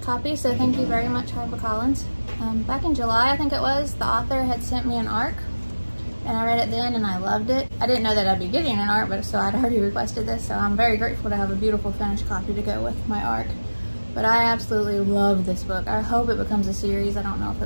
copy, so thank you very much, HarperCollins. Back in July, I think it was, the author had sent me an ARC, and I read it then and I loved it. I didn't know that I'd be getting an ARC, but so I'd already requested this, so I'm very grateful to have a beautiful finished copy to go with my ARC. But I absolutely love this book. I hope it becomes a series. I don't know if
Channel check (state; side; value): inverted; both; correlation -1.00